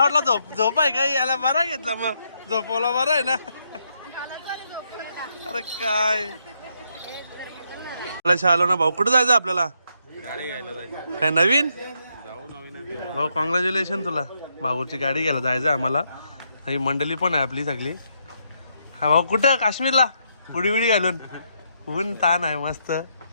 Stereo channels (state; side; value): inverted; both; correlation -0.77